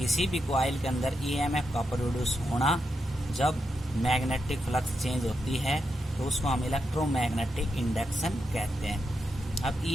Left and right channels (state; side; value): normal; both; correlation 0.85